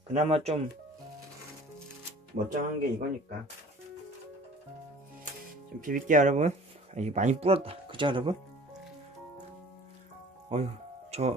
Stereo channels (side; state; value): both; normal; correlation 0.47